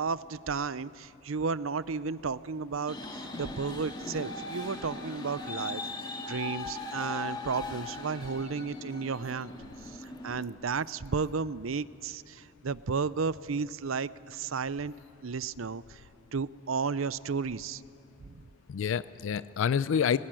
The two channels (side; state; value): both; normal; correlation 0.02